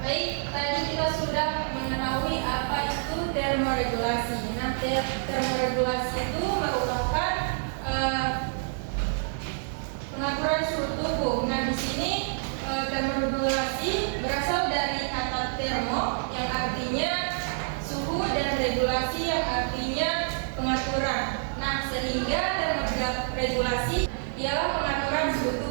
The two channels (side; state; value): left; silent; digital silence